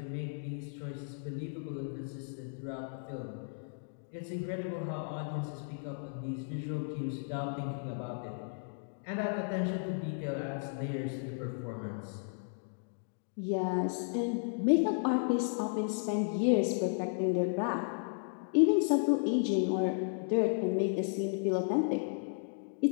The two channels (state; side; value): silent; right; digital silence